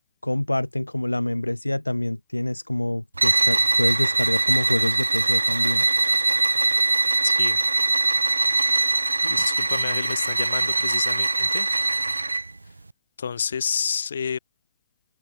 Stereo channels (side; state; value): both; inverted; correlation -0.96